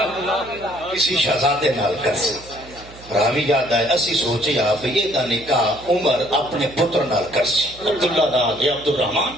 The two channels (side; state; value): right; noise; hum, 20 dB below the sound